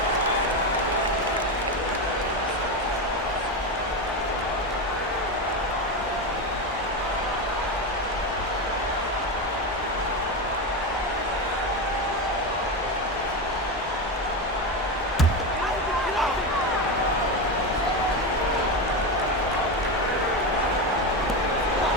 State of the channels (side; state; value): both; normal; correlation 0.15